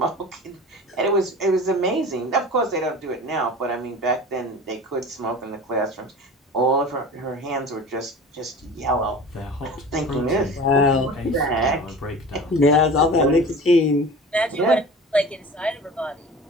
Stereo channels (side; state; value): both; normal; correlation 0.37